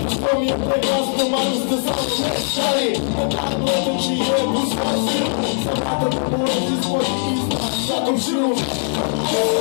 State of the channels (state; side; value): silent; right; digital silence